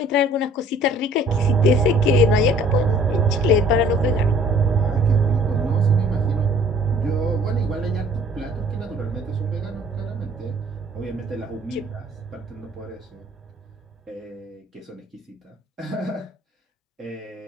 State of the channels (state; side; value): normal; both; correlation 0.55